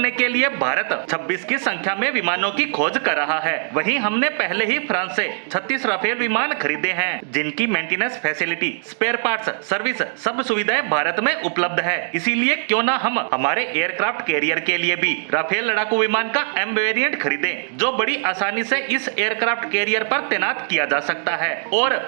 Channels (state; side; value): silent; left; digital silence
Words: के लिए भारत 26 की संख्या में विमानों की खोज कर रहा है। वहीं हमने पहले ही फ्रांस से 36 राफेल विमान खरीदे हैं, जिनकी maintenance facility, spare parts, service सब सुविधाएं भारत में उपलब्ध है। इसीलिए क्यों ना हम हमारे एयरक्राफ्ट कैरियर के लिए भी राफेल लड़ाकू विमान का एम वेरिएंट खरीदें, जो बड़ी आसानी से इस एयरक्राफ्ट कैरियर पर तैनात किया जा सकता है। और